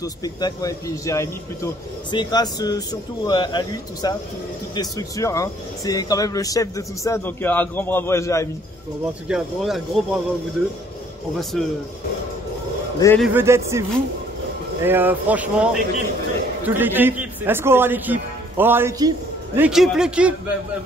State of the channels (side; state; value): both; normal; correlation 0.60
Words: spectacle, ouais, et puis Jérémy plutôt. C'est grâce surtout à lui, tout ça, toutes les structures, hein. C'est quand même le chef de tout ça, donc un grand bravo à Jérémy. Bon, en tout cas, un gros bravo à vous deux. On va les vedettes, c'est vous. Et franchement, toute l'équipe. c'est Est-ce qu'on aura l'équipe? On aura l'équipe? L'équipe.